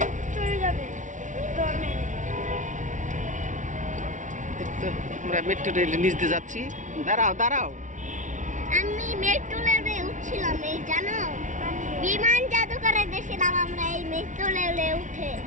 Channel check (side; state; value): left; late; 0.37 ms